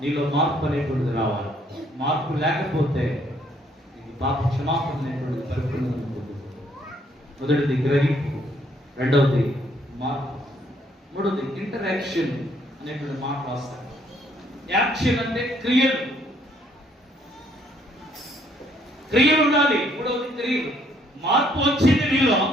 నీలో మార్పు అనేటువంటిది రావాలి. మార్పు లేకపోతే నీకు పాప క్షమాపణ అనేటువంటిది పరిపూర్ణంగా ఉంటుంది. మొదటిది గ్రహింపు, రెండవది మార్పు, మూడవది ఇంటరాక్షన్ అనేటువంటి మాట రాస్తాను. యాక్షన్ అంటే క్రియలు, క్రియలు ఉండాలి. మూడవది క్రియలు. మార్పు వచ్చింది నీలో,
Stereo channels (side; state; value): both; normal; correlation 0.66